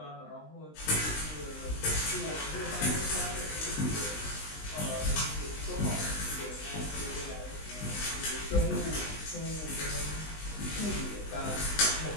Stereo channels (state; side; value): late; right; 20 ms